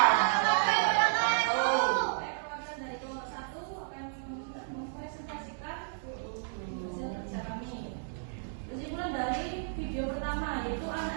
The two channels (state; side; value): silent; left; digital silence